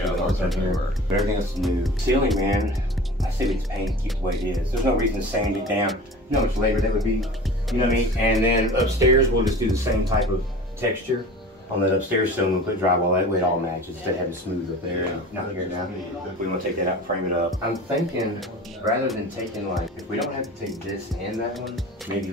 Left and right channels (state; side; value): normal; both; correlation 0.38